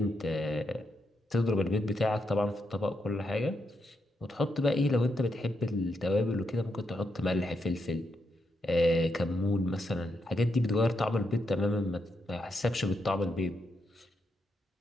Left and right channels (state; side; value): normal; both; correlation 0.81